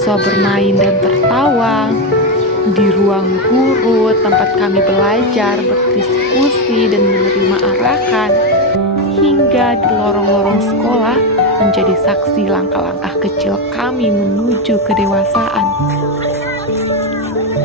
bermain dan tertawa, di ruang guru tempat kami belajar, berdiskusi, dan menerima arahan, hingga di lorong-lorong sekolah menjadi saksi langkah-langkah kecil kami menuju kedewasaan.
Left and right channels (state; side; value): normal; both; correlation 0.09